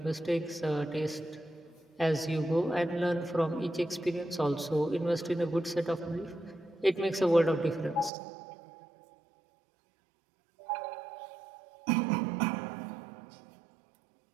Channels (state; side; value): drops out; left; at 8.1 s